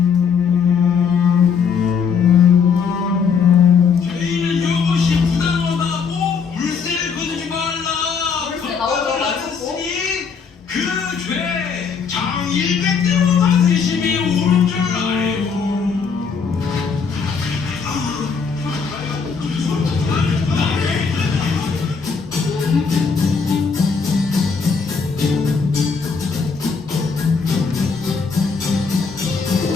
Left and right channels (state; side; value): quieter; right; 5.8 dB